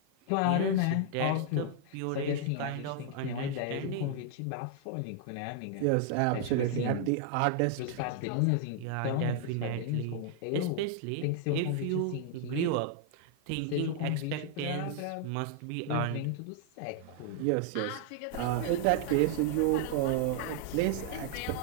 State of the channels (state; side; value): different; both; correlation 0.00